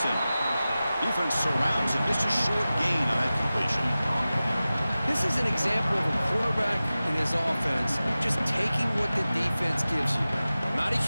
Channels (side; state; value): both; inverted; correlation -0.96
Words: Defense surrounds him. Just a short gain on that completion. This is an example of a quarterback and his offense just taking what the defense gives you. Not a